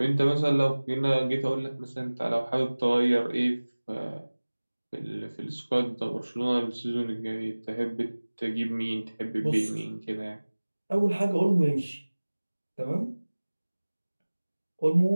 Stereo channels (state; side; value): inverted; both; correlation -1.00